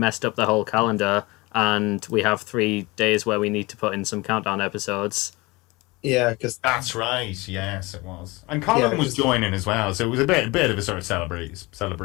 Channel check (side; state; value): right; quieter; 23.4 dB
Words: up the whole calendar, and we have 3 days where we need to put in some countdown episodes. Yeah, because that's right. Yes, it was. And Colin was joining as well, so it was a bit of a sort of